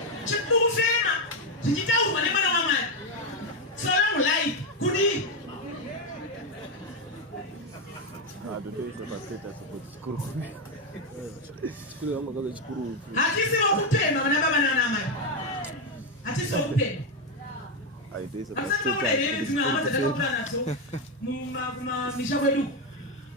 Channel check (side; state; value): both; normal; correlation 0.07